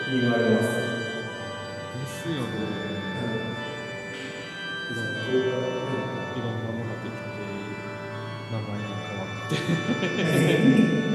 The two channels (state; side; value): identical; both; correlation 1.00